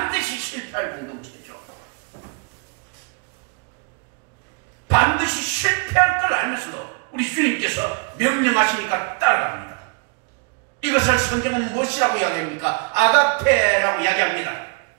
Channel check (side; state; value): left; quieter; 36.0 dB